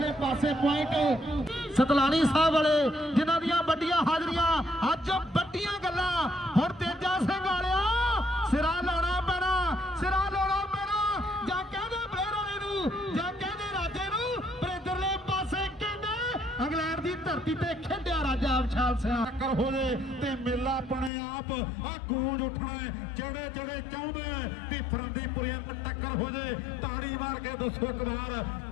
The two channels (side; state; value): right; drops out; at 21.1 s